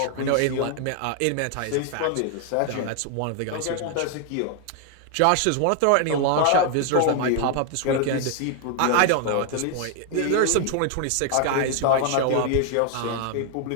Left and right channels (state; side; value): different; both; correlation 0.00